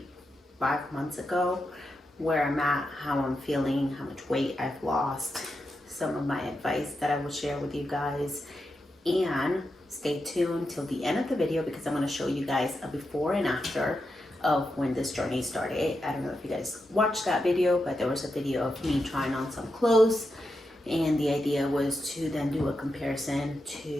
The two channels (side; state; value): both; normal; correlation 0.87